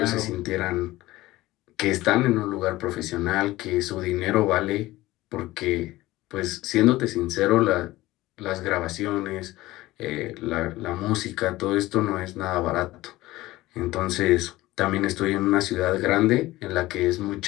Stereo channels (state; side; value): quieter; right; 17.8 dB